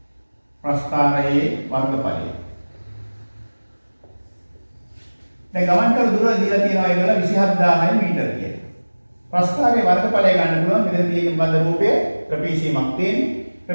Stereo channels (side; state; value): both; inverted; correlation -1.00